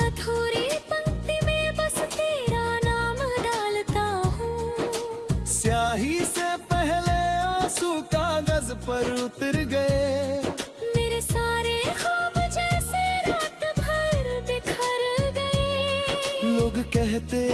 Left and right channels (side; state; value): both; identical; correlation 1.00